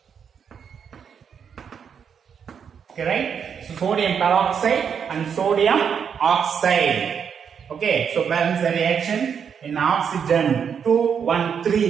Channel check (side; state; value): left; quieter; 7.3 dB